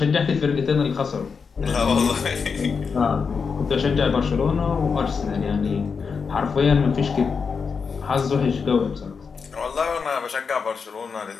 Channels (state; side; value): quieter; right; 5.5 dB